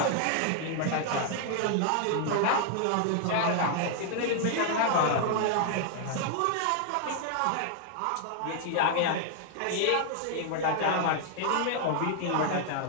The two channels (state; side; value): different; both; correlation 0.00